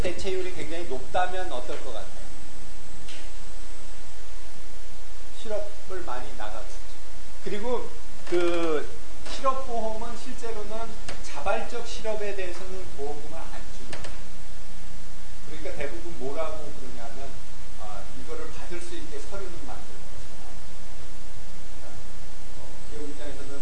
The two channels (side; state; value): both; identical; correlation 1.00